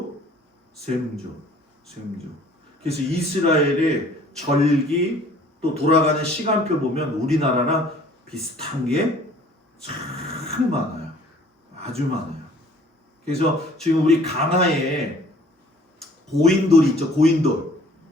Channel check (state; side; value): normal; both; correlation 0.54